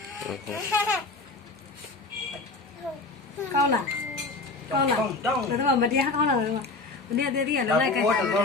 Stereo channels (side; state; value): right; quieter; 3.5 dB